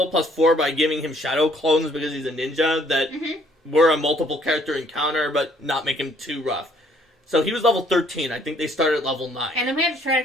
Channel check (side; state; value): both; normal; correlation 0.63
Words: +4 by giving him shadow clones because he's a ninja that were a multiple character encounter, but not make him too rough. So he was level 13. I think they started at level 9. And then we had to try